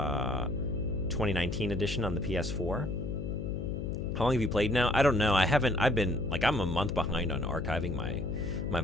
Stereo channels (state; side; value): noise; left; hum, 4 dB below the sound